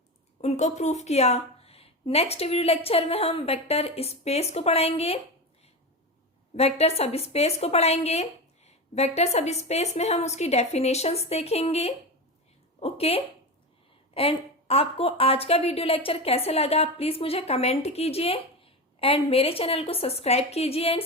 उनको प्रूफ किया। नेक्स्ट वीडियो लेक्चर में हम वेक्टर स्पेस को पढ़ाएंगे, वेक्टर सब स्पेस को पढ़ाएंगे, वेक्टर सब स्पेस में हम उसकी डेफिनेशंस देखेंगे। ओके, एंड आपको आज का वीडियो लेक्चर कैसे लगा आप प्लीज़ मुझे कमेंट कीजिए एंड मेरे चैनल को सब्सक्राइब कीजिए एंड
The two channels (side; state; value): both; normal; correlation 0.21